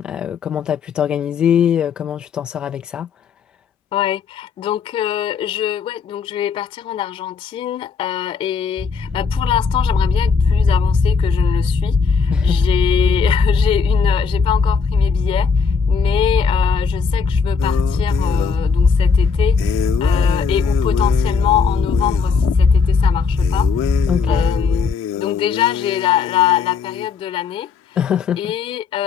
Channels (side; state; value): right; quieter; 5.5 dB